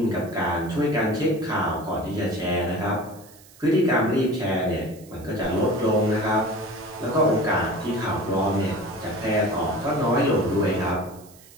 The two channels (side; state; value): right; noise; hiss, 24 dB below the sound